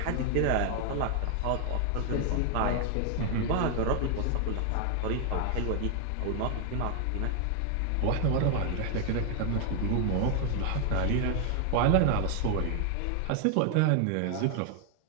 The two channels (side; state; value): both; different; correlation 0.00